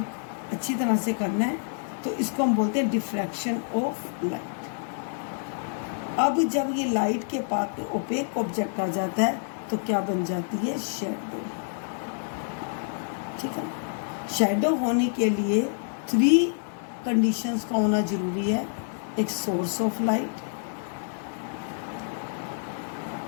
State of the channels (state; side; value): silent; right; digital silence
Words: अच्छी तरह से करना है, तो इसको हम बोलते हैं डिफ्रैक्शन ऑफ लाइट। अब जब ये लाइट के पाथ में ओपेक ऑब्जेक्ट आ जाता है तो क्या बन जाती है? शैडो। ठीक है, शैडो होने के लिए 3 कंडीशंस का होना जरूरी है। एक सोर्स ऑफ लाइट,